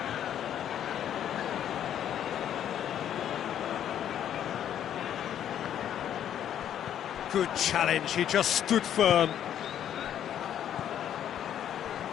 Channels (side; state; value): right; quieter; 10.2 dB